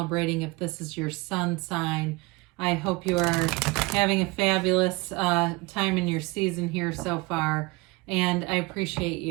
if this is your sun sign. I hope you are having a fabulous time in your season here so far, and I appreciate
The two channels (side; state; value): left; quieter; 24.1 dB